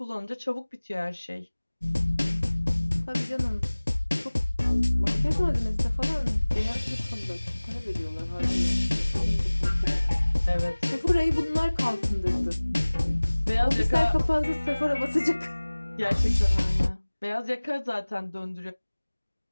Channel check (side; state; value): both; inverted; correlation -1.00